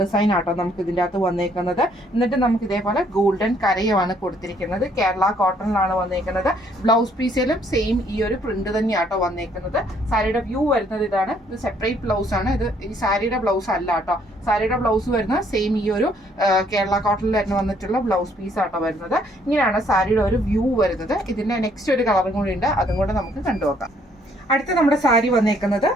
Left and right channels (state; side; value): normal; both; correlation 0.65